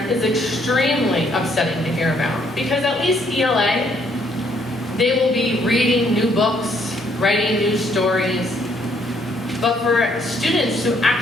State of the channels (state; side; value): normal; both; correlation 0.68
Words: is extremely upsetting to hear about because at least ELA, they will be reading new books, writing new stories. But for students who